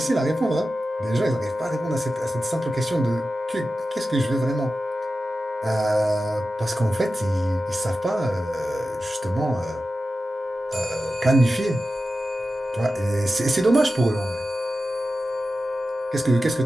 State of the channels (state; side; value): normal; both; correlation 0.93